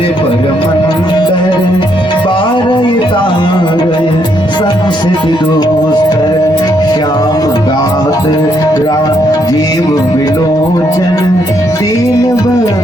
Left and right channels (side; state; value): both; normal; correlation 0.74